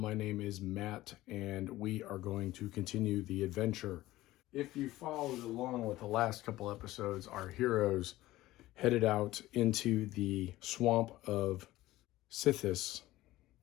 name is Matt, and we are going to continue the adventure. If you followed along with the last couple episodes, our heroes headed out into the swamp of Sithis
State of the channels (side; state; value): right; quieter; 16.6 dB